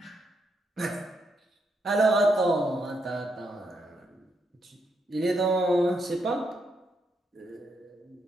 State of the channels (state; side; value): normal; both; correlation 0.79